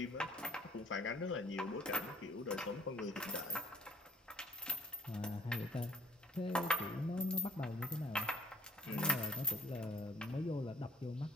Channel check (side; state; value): both; normal; correlation 0.59